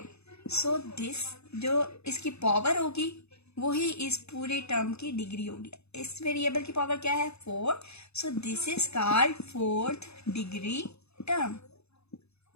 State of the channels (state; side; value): late; right; 0.79 ms